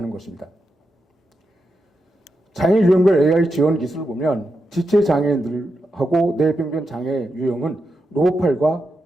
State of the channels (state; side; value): normal; both; correlation 0.87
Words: 것입니다. 장애 유형별 AI 지원 기술을 보면 지체 장애인들하고 뇌병변 장애 유형은 로봇팔과